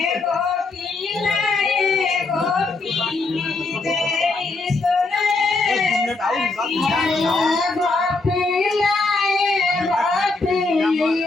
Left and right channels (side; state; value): right; quieter; 3.6 dB